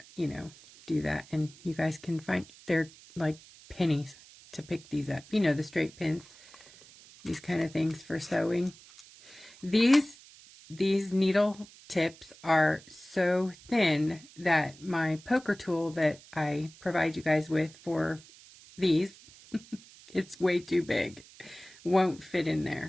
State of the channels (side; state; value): right; noise; hiss, 22 dB below the sound